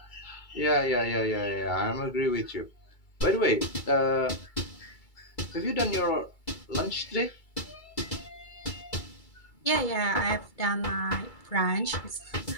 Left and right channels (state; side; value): late; right; 2.3 ms